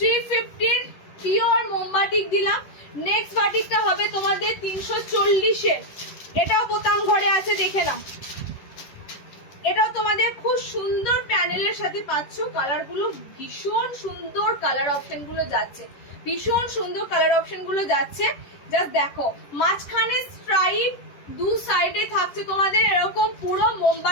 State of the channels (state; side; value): late; right; 11 ms